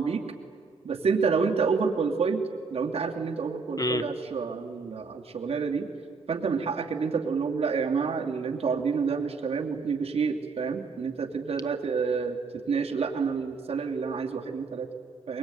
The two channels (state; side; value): quieter; left; 4.8 dB